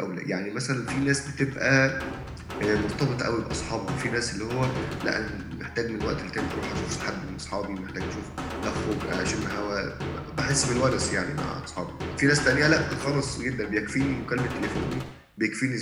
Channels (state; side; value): identical; both; correlation 1.00